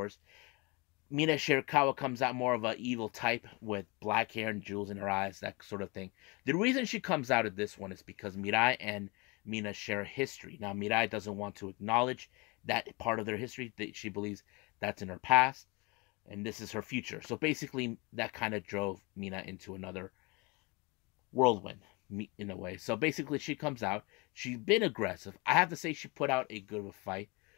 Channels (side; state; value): right; quieter; 27.7 dB